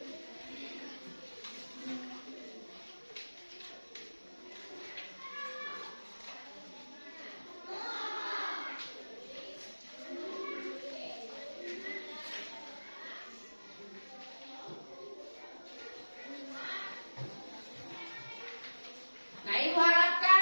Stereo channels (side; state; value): both; inverted; correlation -1.00